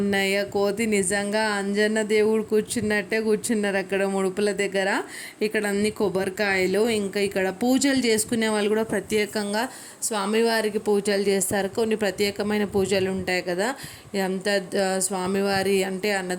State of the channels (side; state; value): both; identical; correlation 1.00